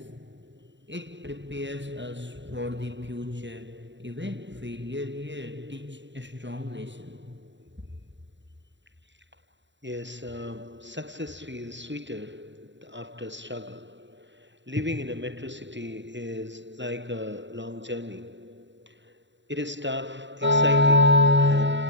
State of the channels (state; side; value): late; left; 0.53 ms